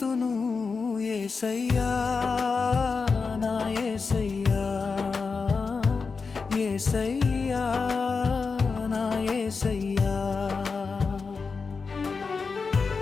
యేసయ్యా నా యేసయ్యా, యేసయ్యా నా యేసయ్యా.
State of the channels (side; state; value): right; quieter; 4.8 dB